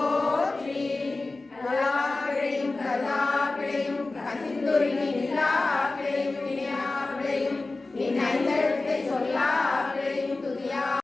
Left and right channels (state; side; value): quieter; right; 3.3 dB